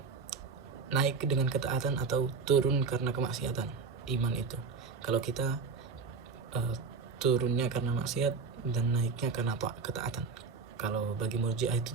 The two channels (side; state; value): left; quieter; 4.9 dB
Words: naik dengan ketaatan atau turun karena kemaksiatan. Iman itu, kalau kita turunnya karena maksiat dan naiknya karena ketaatan. Kalau bagi Murji'ah itu